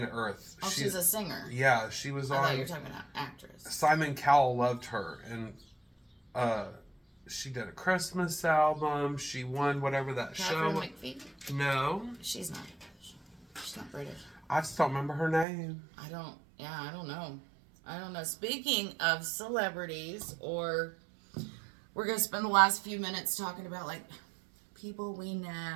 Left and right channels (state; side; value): drops out; left; at 15.5 s